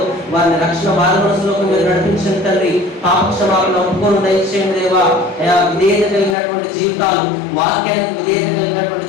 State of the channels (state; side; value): drops out; right; at 6.4 s